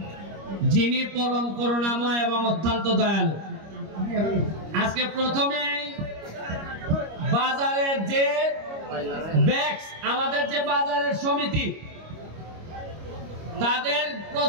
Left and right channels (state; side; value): late; left; 25 ms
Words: যিনি পরম করুণাময় এবং অত্যন্ত দয়ালু। আজকে প্রথমে বাজারের যে ব্যাক্স, আমাদের যে বাজারের সমিতি, তাদের